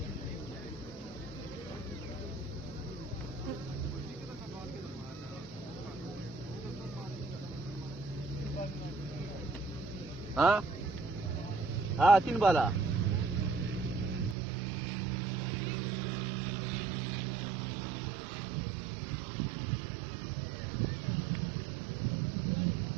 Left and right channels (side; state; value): left; drops out; at 14.4 s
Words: हाँ हाँ 3 बाला।